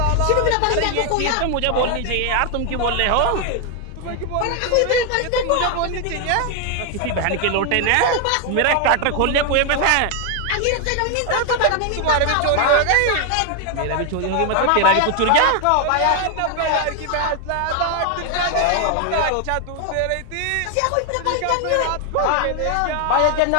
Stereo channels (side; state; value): both; different; correlation 0.00